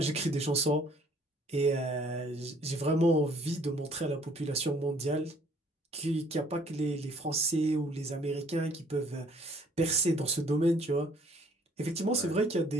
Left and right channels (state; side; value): normal; both; correlation 0.59